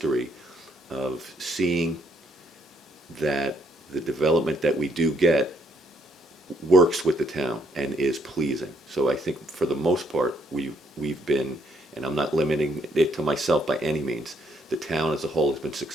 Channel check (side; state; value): both; normal; correlation 0.70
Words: of seeing that the development that we do get works with the town and is pleasing. So I think for the most part, we've been, and I'm not limiting it to myself by any means, the town as a whole has been